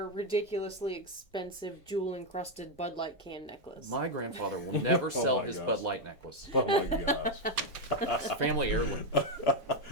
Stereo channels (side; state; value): both; normal; correlation 0.04